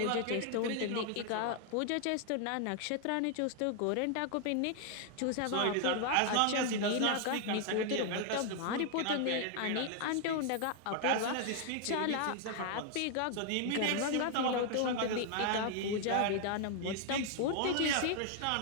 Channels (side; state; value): both; different; correlation 0.00